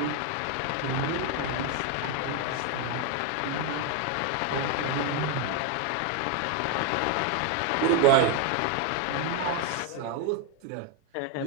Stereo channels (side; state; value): both; different; correlation 0.01